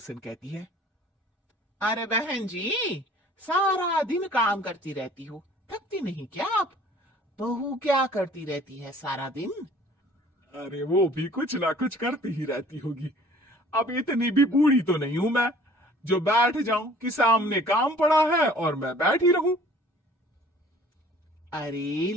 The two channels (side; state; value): both; normal; correlation 0.52